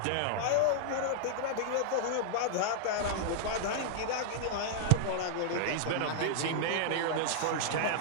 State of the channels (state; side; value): different; both; correlation -0.01